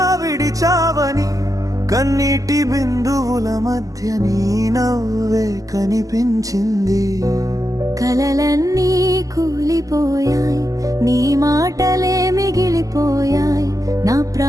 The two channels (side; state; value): left; late; 0.17 ms